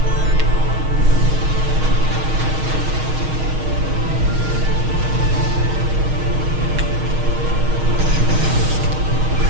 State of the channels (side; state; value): left; late; 6.4 ms